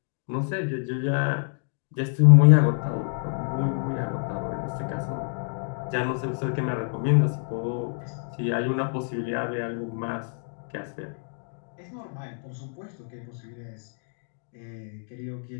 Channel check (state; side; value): silent; right; digital silence